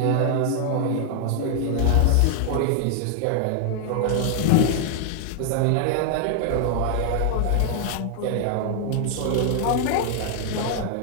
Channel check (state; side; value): different; both; correlation 0.00